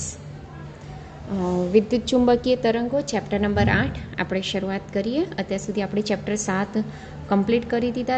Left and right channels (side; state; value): both; identical; correlation 1.00